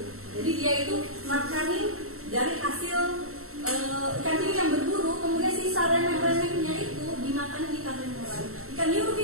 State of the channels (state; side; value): late; left; 0.63 ms